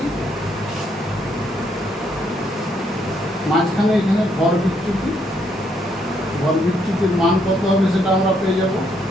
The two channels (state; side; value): normal; both; correlation 0.73